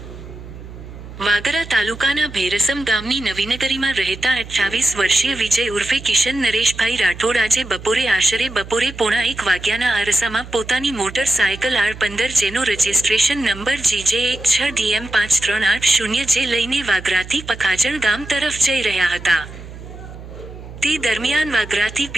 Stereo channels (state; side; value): noise; right; hum, 14 dB below the sound